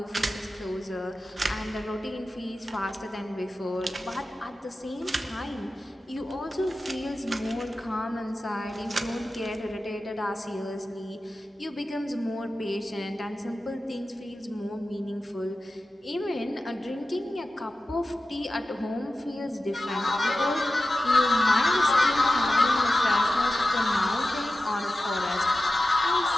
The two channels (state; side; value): normal; both; correlation 0.93